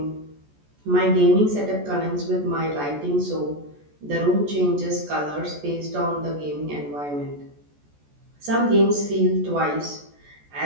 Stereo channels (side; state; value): left; late; 14 ms